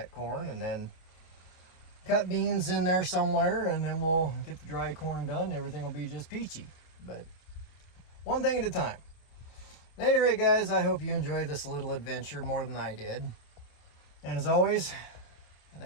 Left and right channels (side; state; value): right; late; 28 ms